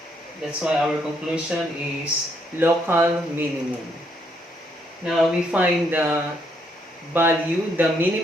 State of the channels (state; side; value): normal; both; correlation 0.73